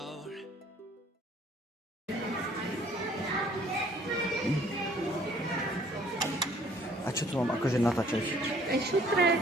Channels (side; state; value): both; normal; correlation 0.58